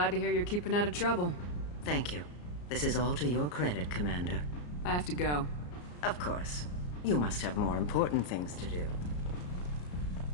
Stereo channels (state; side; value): late; right; 34 ms